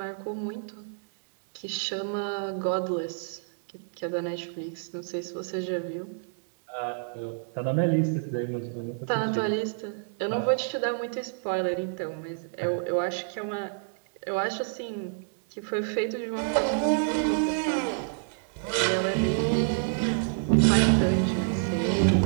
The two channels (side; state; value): left; silent; digital silence